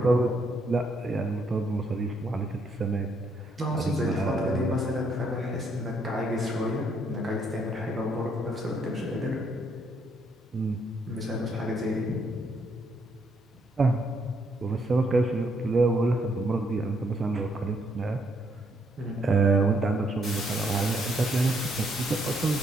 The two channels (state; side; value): normal; both; correlation 0.72